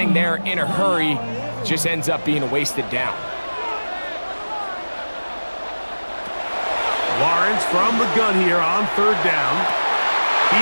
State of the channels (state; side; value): inverted; both; correlation -1.00